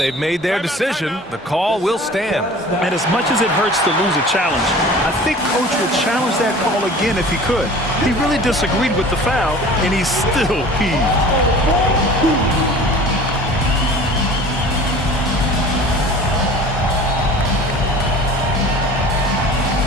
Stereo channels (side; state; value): both; normal; correlation 0.43